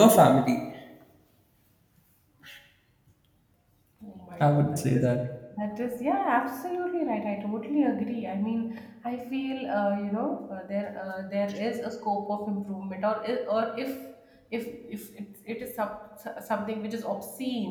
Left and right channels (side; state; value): both; identical; correlation 1.00